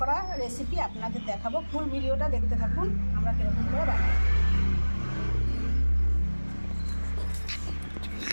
করা রেসিপি আপনাদের দেখাবো। ফুল ভিডিওটা দেখতে থাকুন আমরা কীরকম করে বানাই।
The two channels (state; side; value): inverted; both; correlation -1.00